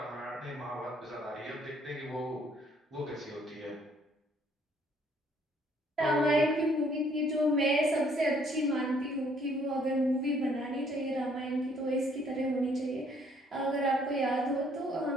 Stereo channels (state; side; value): normal; both; correlation 0.64